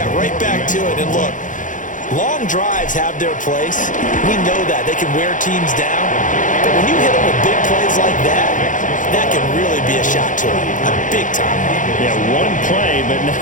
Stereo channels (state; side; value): late; right; 0.37 ms